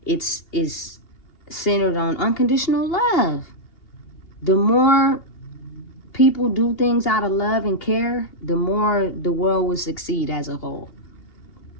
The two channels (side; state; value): right; late; 2.8 ms